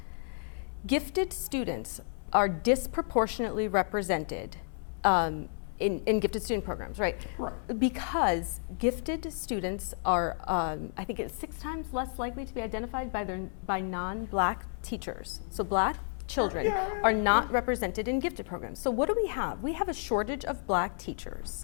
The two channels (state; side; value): silent; right; 57 dB below the other